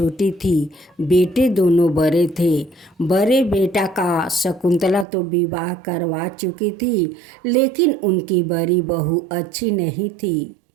थी, बेटे दोनों बड़े थे। बड़े बेटा का शकुंतला तो विवाह करवा चुकी थी, लेकिन उनकी बड़ी बहू अच्छी नहीं थी।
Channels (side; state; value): left; drops out; at 5.1 s